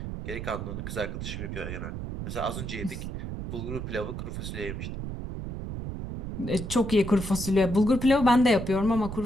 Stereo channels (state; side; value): noise; right; rumble, 6 dB below the sound